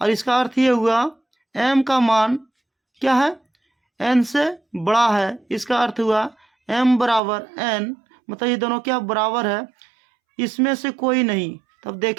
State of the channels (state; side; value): drops out; left; at 7.2 s